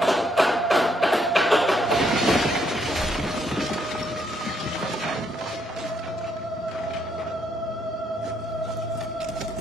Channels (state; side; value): normal; both; correlation 0.73